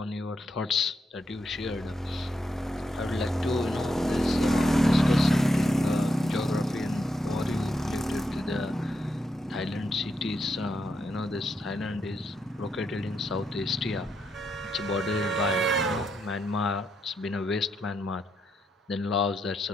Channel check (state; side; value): normal; both; correlation 0.81